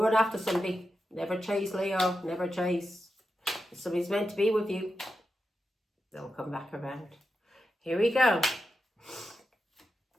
after somebody. Never chase, Leo. Never chase. If somebody's meant to be with you, they'll come back around. Here we go.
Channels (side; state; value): both; normal; correlation 0.89